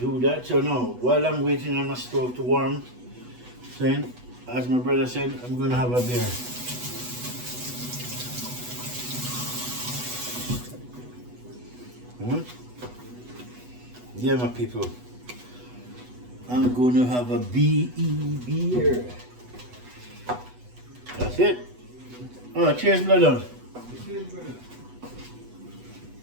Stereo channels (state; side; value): late; left; 8.1 ms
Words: that. So now, while I'm waiting on my stove to warm, then, as my brother said, I'm gonna have a beer. Yeah, my people. I'm gonna have a BE beer. That's it. Oh, cheers, brother. Cheers, brother.